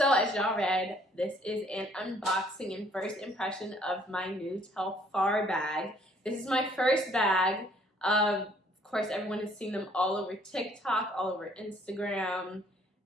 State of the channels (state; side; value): normal; both; correlation 0.61